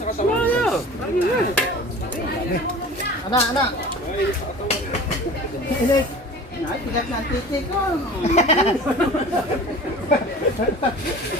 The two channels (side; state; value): both; normal; correlation 0.40